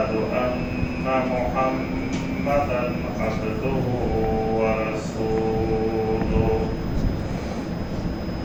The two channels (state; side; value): identical; both; correlation 1.00